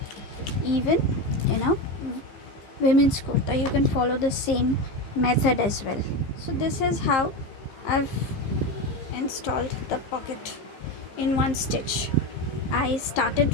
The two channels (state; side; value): late; right; 15 ms